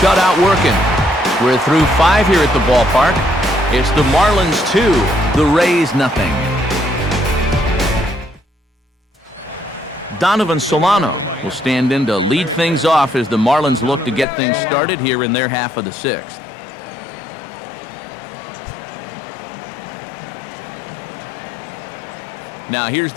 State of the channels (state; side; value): drops out; right; at 14.2 s